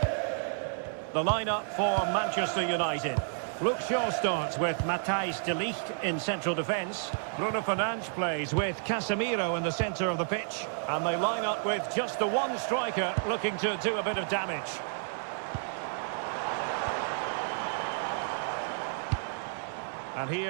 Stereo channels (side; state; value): left; silent; digital silence